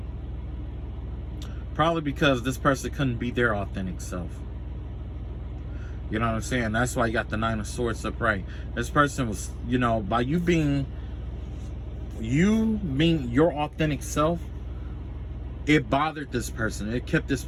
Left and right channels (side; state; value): both; identical; correlation 1.00